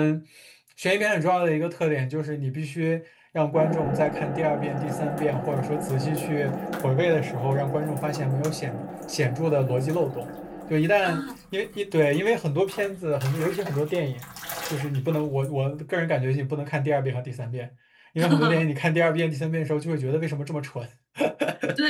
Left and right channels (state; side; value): identical; both; correlation 1.00